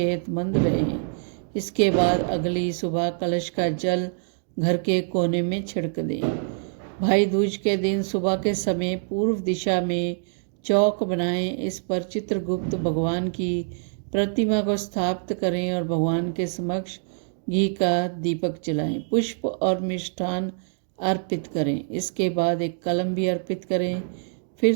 रहें। इसके बाद अगली सुबह कलश का जल घर के कोने में छिड़क दें। भाई दूज के दिन सुबह के समय पूर्व दिशा में चौक बनाएं। इस पर चित्रगुप्त भगवान की प्रतिमा को स्थापित करें और भगवान के समक्ष घी का दीपक जलाएं। पुष्प और मिष्ठान अर्पित करें। इसके बाद एक कलम भी अर्पित करें। फिर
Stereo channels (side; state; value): left; silent; digital silence